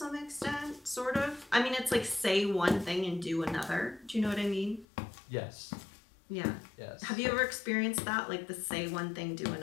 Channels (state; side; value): drops out; right; at 4.9 s